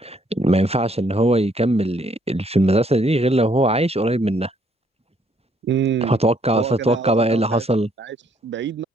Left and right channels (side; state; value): both; normal; correlation 0.68